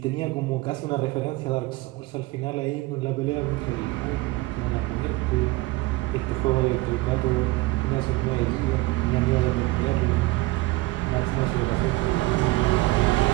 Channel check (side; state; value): left; quieter; 20.4 dB